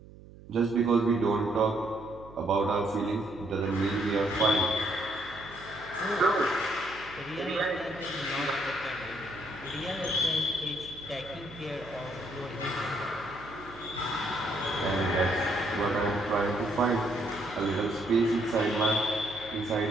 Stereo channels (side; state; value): right; noise; hum, 19 dB below the sound